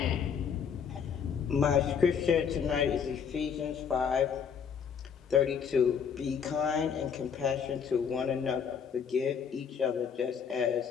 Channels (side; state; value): right; quieter; 7.0 dB